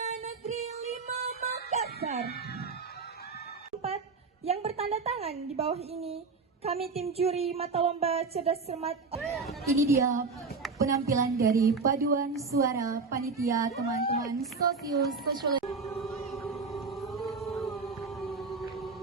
Negeri 5 Makassar. 4 yang bertanda tangan di bawah ini, kami tim juri mata lomba cerdas cermat. Ini dia penampilan dari paduan suara panitia teman-teman sosiologi.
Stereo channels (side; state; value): left; quieter; 4.5 dB